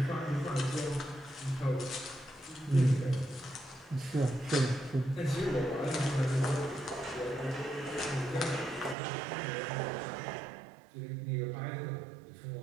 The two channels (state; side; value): drops out; left; at 9.0 s